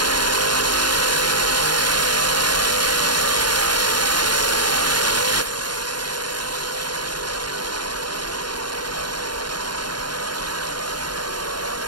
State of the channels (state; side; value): late; left; 0.71 ms